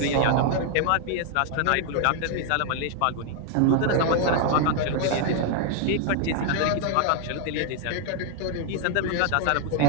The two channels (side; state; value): both; different; correlation 0.00